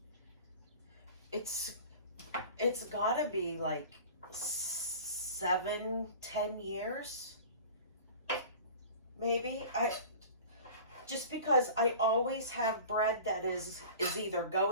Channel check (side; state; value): both; inverted; correlation -0.40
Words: it's got to be like 7-10 years, maybe. Just because I always have bread that is either